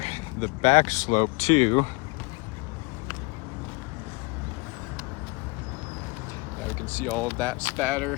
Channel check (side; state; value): right; quieter; 26.4 dB